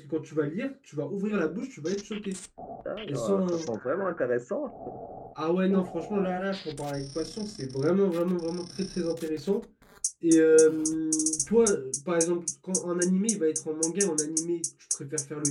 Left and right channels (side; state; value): both; identical; correlation 1.00